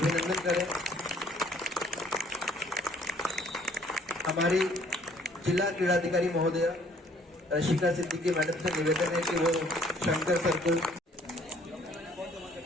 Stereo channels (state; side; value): normal; both; correlation 0.60